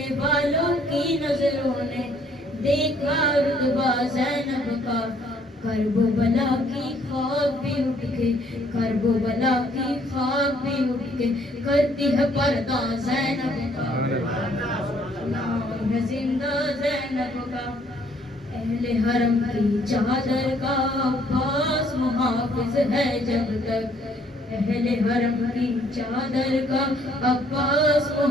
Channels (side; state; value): both; normal; correlation 0.64